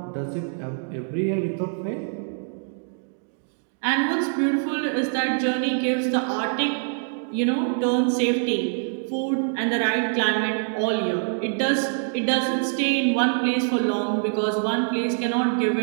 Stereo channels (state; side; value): silent; left; 62 dB below the other